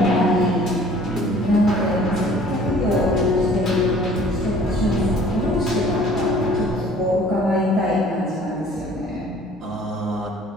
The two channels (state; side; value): normal; both; correlation 0.53